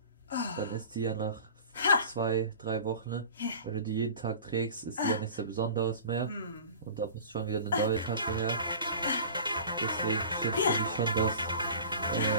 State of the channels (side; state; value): both; inverted; correlation -0.40